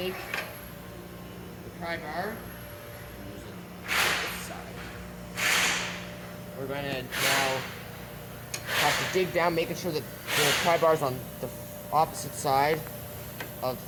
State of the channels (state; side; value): identical; both; correlation 1.00